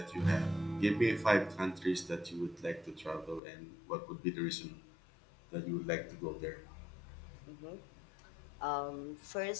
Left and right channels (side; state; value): right; drops out; at 3.4 s